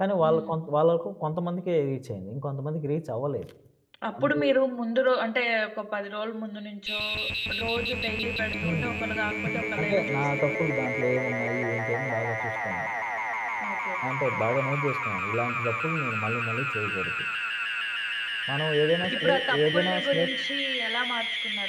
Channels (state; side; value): identical; both; correlation 1.00